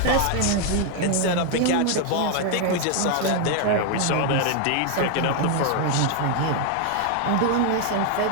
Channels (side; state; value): both; different; correlation 0.00